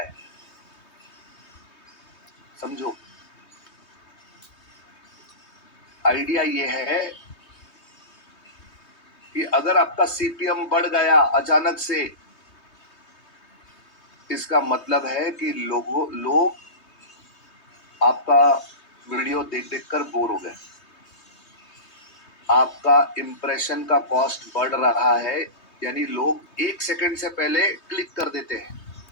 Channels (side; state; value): right; late; 3.2 ms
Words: समझो। आइडिया ये है कि अगर आपका सीपीएम बढ़ गया अचानक से, इसका मतलब है कि लोग आपका वीडियो देख देख कर बोर हो गए, आपका इंप्रेशन का कॉस्ट बढ़ रहा है, यानी लोग 1 सेकंड से पहले क्लिक कर देते हैं।